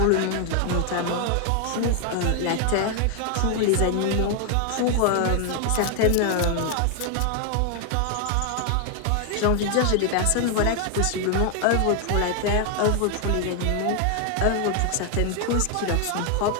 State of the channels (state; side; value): different; both; correlation 0.00